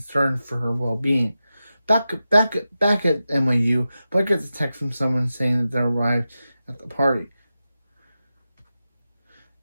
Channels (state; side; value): inverted; both; correlation -0.92